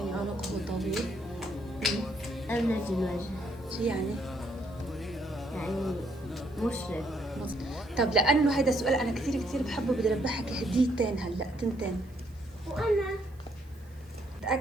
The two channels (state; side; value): noise; right; hiss, 29 dB below the sound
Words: عنقه طويل. أبلج الوجه. شو يعني؟ يعني مشرق. طب لانه هيدا السؤال انا كثير بحبه بدي اربحك هديتين هلا 2. وأنا